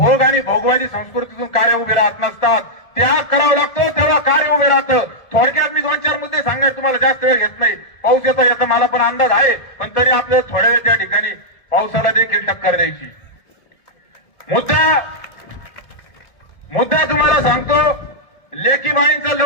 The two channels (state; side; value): late; right; 1.7 ms